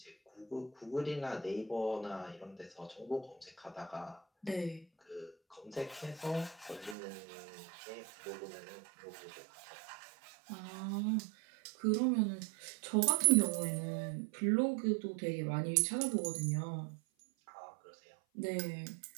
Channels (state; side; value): drops out; left; at 7.0 s